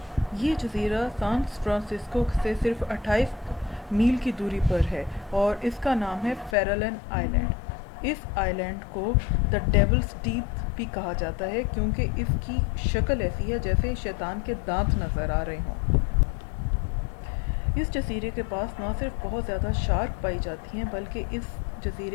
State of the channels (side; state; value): right; drops out; at 6.6 s